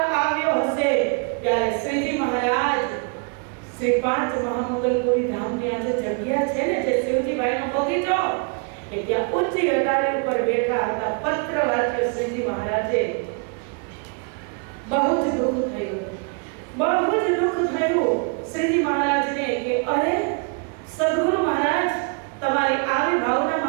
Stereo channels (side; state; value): left; quieter; 36.3 dB